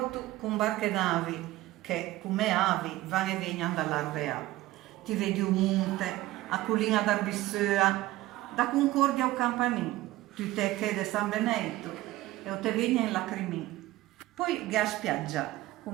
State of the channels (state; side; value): quieter; left; 17.0 dB